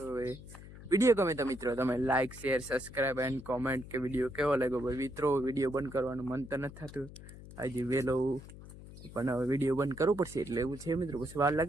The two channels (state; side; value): noise; left; hum, 16 dB below the sound